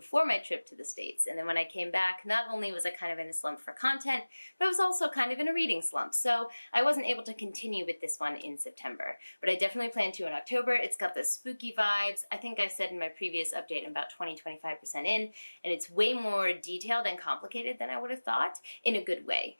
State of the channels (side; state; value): both; inverted; correlation -1.00